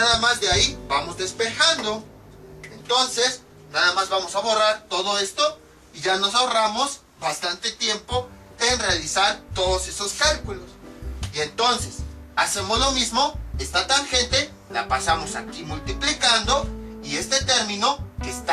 más de ahí vamos despejando. Entonces, nada más vamos a borrar todo esto. Y ya nos ahorramos bastante tiempo en realizar todos esos cálculos. Y entonces, hacemos lo mismo. Esta tangente la pasamos aquí multiplicando. Y este término que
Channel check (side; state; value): both; identical; correlation 1.00